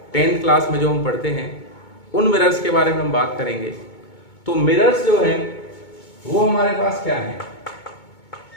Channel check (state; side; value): late; right; 2.2 ms